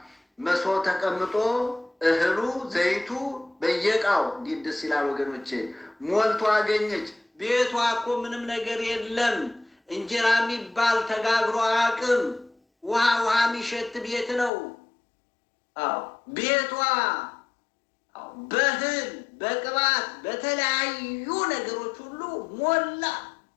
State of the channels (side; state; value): right; drops out; at 14.5 s